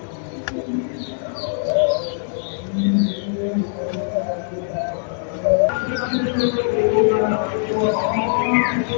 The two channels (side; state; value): right; silent; 63 dB below the other